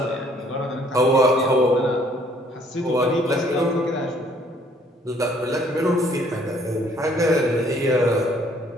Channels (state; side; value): normal; both; correlation 0.61